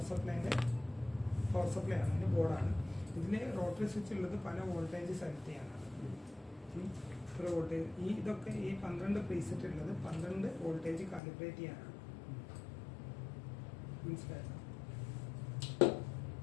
സപ്ലൈ ആണ്, അതിൻ്റെ ബോർഡാണ്. ഇതിന് റോട്ടറി സ്വിച്ച് ഉള്ളത് പല വോൾട്ടേജ് സെലക്ട് ചെയ്യാനാണ്. ഒരു വോൾട്ടേജ് ഇതൊക്കെ ഈ 12 പ്രീസെറ്റ് ഉള്ളത് 12 വോൾട്ടേജ് കാലിബ്രേറ്റ് ചെയ്യാനാണ്. മനസ്സിലായോ?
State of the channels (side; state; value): right; drops out; at 11.2 s